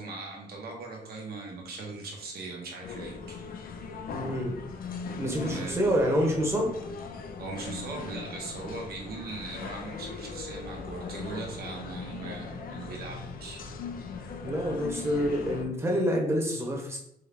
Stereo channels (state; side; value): normal; both; correlation 0.64